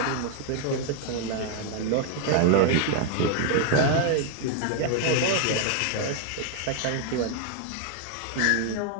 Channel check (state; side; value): different; both; correlation 0.00